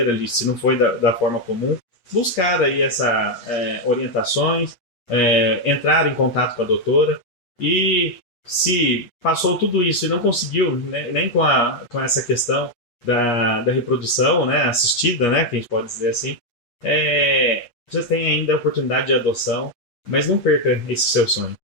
ali, se não foi da forma comum, buscar aí essas orientações, entrar em contato com a doutora, e se passou tudo isso e não conseguiu, né, nem com essa questão da reprodução, né, assistida, né, que a gente pode dizer assim, você tem ainda a oportunidade de adoção, mas não perca esse seu sonho,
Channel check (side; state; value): right; late; 8.4 ms